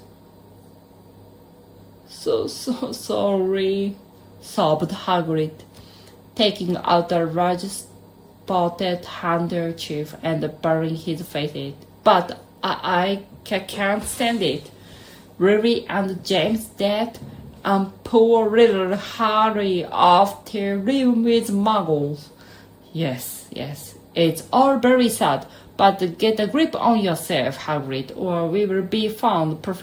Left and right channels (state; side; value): identical; both; correlation 1.00